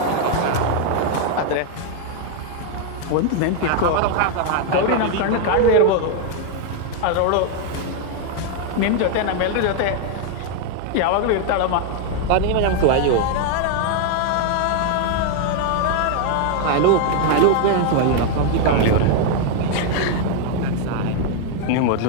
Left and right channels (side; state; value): both; different; correlation 0.00